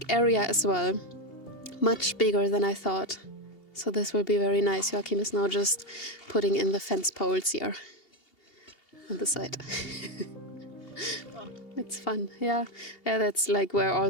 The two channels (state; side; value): late; right; 2.8 ms